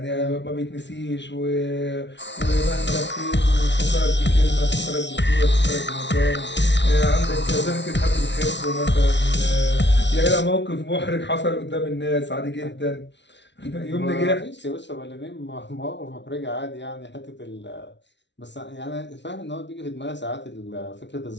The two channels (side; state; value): right; late; 0.51 ms